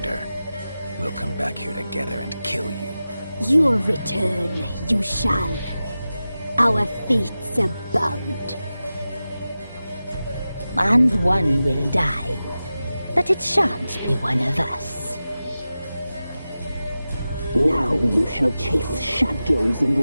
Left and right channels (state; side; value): inverted; both; correlation -0.94